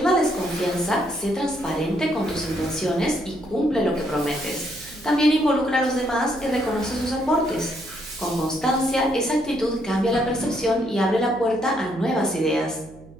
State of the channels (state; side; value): noise; right; hum, 21 dB below the sound